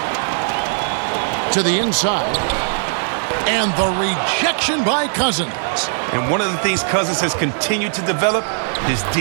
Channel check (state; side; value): silent; left; digital silence